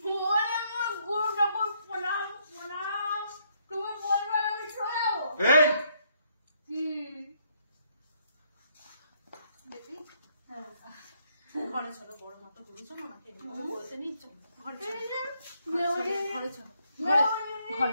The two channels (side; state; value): both; inverted; correlation -0.72